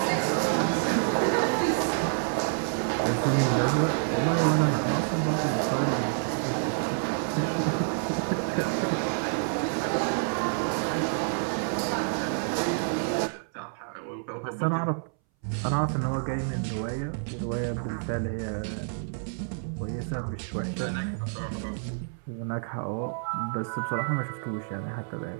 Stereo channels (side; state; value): left; silent; 59 dB below the other